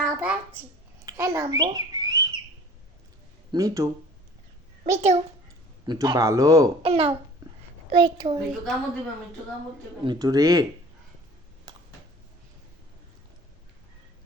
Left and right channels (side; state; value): both; normal; correlation 0.47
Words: হ্যাঁ নামবো মিঠু মিঠু মিঠু ভালো নাও মিঠু মিঠু রে